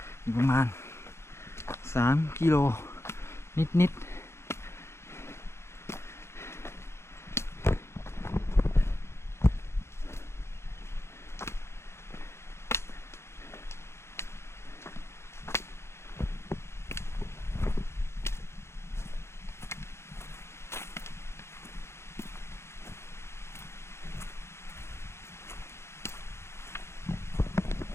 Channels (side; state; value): right; late; 0.13 ms